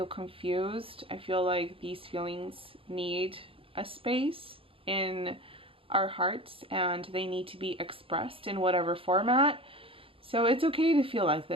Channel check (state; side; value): late; left; 0.26 ms